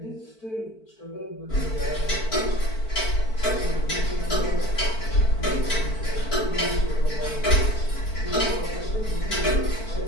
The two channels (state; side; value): late; right; 4.5 ms